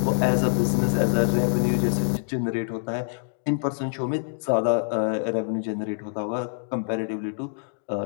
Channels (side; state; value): right; silent; digital silence